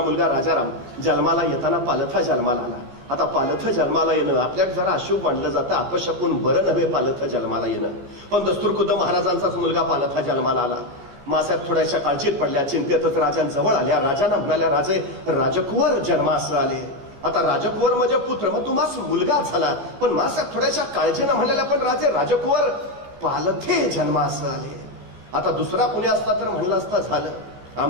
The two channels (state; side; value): late; left; 15 ms